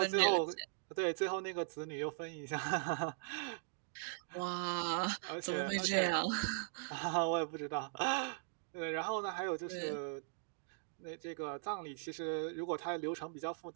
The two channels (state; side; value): silent; left; digital silence